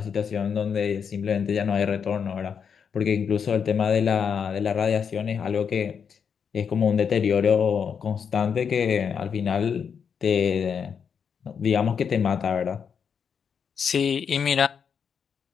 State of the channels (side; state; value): right; quieter; 6.9 dB